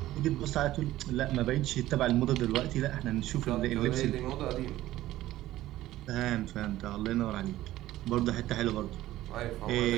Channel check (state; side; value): quieter; left; 15.1 dB